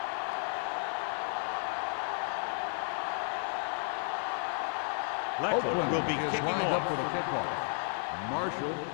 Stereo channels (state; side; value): silent; right; 56 dB below the other